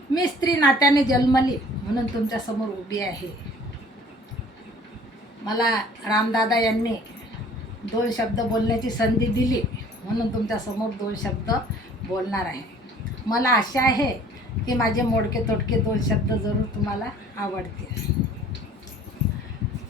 मी स्त्री नात्याने जन्मली म्हणून तुमच्यासमोर उभी आहे. मला रामदादा यांनी 2 शब्द बोलण्याची संधी दिली म्हणून तुमच्यासमोर 2 शब्द बोलणार आहे. मला आशा आहे की माझे मोडके तोडके 2 शब्द जरूर तुम्हाला आवडतील.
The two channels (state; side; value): normal; both; correlation 0.52